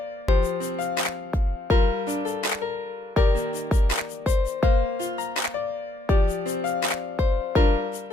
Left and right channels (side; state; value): both; normal; correlation 0.72